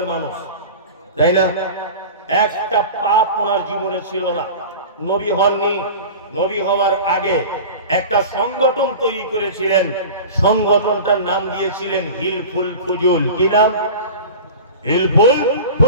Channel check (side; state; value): both; inverted; correlation -0.34